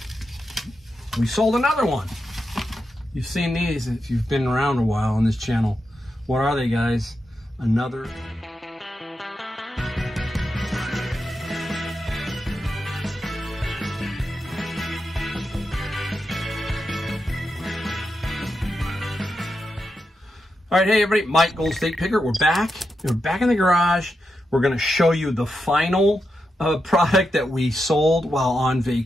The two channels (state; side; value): normal; both; correlation 0.87